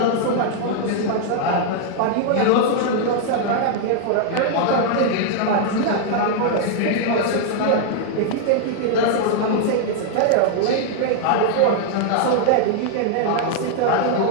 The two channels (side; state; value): both; different; correlation 0.00